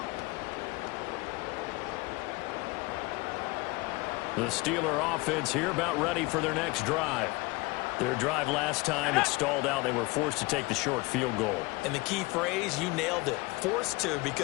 The Steeler offense here about ready for their next drive. Their drive last time, it stalled out. They were forced to take the short field goal. And the key phrase, you nailed it. Forced to,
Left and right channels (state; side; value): quieter; right; 23.6 dB